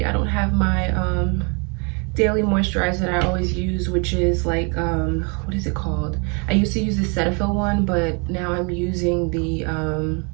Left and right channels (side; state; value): left; quieter; 34.2 dB